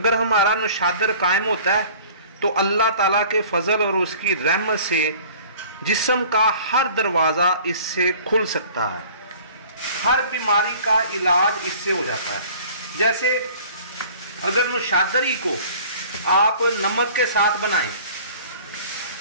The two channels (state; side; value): inverted; both; correlation -0.48